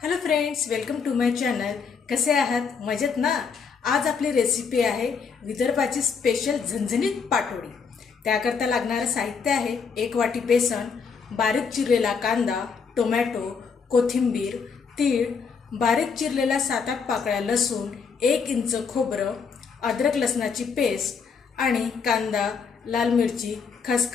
Hello friends, welcome to my channel. कसे आहात? मजेत ना? आज आपली रेसिपी आहे विदर्भाची स्पेशल झणझणीत पाटोडी. त्याकरता लागणारं साहित्य आहे 1 वाटी बेसन, बारीक चिरलेला कांदा, टोमॅटो, कोथिंबीर, तीळ, बारीक चिरलेला 7-8 पाकळ्या लसूण, 1 इंच खोबरं, अद्रक लसणाची पेस्ट आणि कांदा, लाल मिरची,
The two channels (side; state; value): right; quieter; 5.7 dB